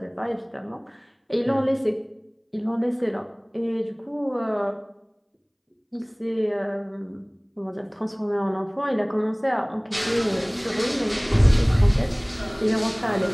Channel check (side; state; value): both; identical; correlation 1.00